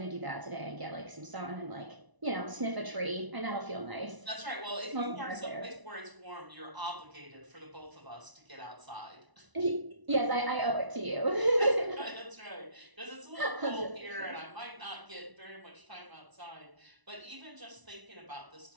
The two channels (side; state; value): left; late; 1.0 ms